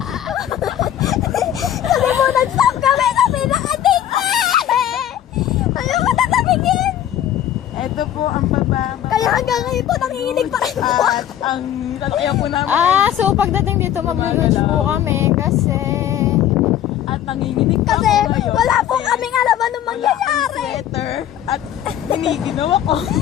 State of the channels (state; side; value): quieter; right; 11.1 dB